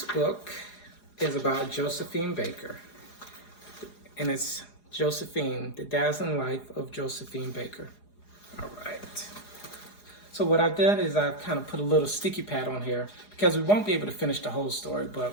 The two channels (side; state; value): right; late; 4.8 ms